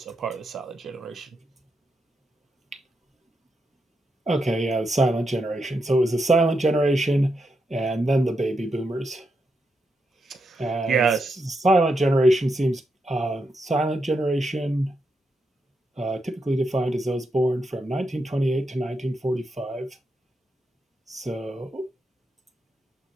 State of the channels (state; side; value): normal; both; correlation 0.84